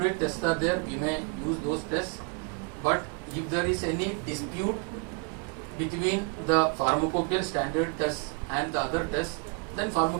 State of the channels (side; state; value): left; quieter; 35.1 dB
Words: tests are there, we may use those tests. But if there is any dispute between the pharmacopoeia standard test and the other tests, then